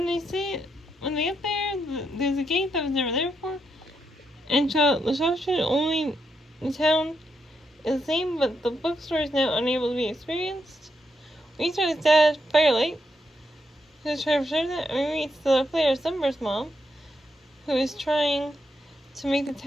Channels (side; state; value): both; normal; correlation 0.81